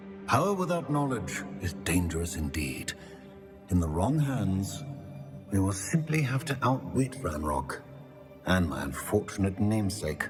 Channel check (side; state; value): both; identical; correlation 1.00